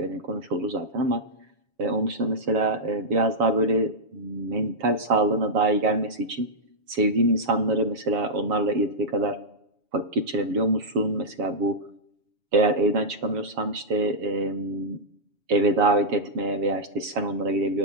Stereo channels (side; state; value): left; late; 7.1 ms